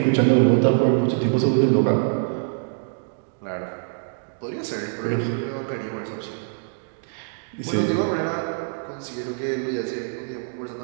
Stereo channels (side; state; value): left; silent; 62 dB below the other